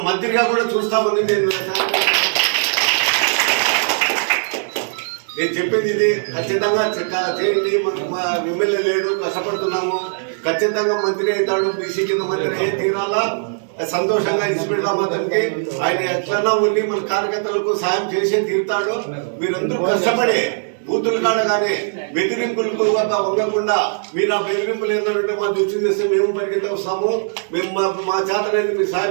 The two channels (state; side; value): silent; left; 66 dB below the other